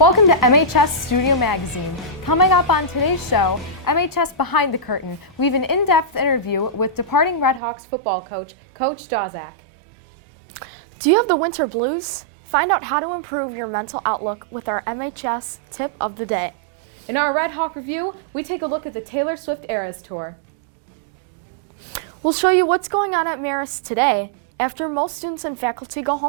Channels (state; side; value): drops out; left; at 7.6 s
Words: to MHS Studio Magazine. Coming up on today's show, MHS Behind the Curtain, we have an in-depth interview with departing Redhawks football coach, Coach Dawczak. Do you have the winter blues? Find out how to improve your mental outlook with our MHS tip of the day. In our RedHawk review, we take a look at the Taylor Swift Eras Tour. We'll show you what's going on at Marist today after most students and faculty go